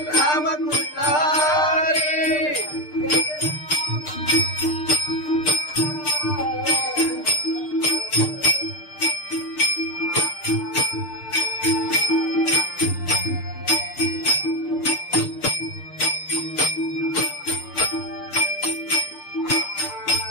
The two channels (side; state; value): right; late; 6.6 ms